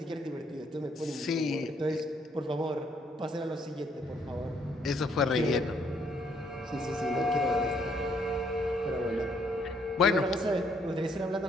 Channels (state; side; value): normal; both; correlation 0.68